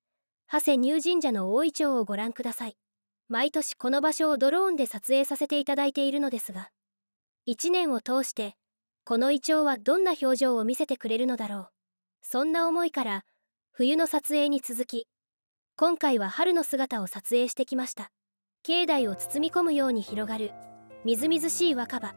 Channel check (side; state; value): both; inverted; correlation -1.00